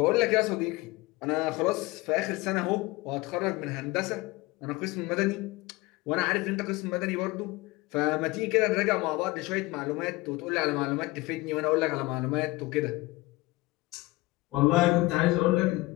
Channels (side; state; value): right; quieter; 21.6 dB